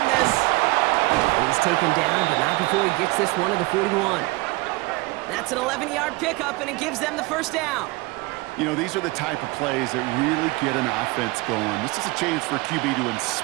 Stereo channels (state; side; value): quieter; left; 23.1 dB